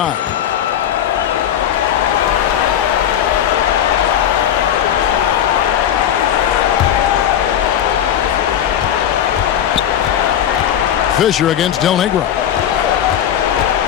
Fisher against Del Negro.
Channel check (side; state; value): right; quieter; 10.1 dB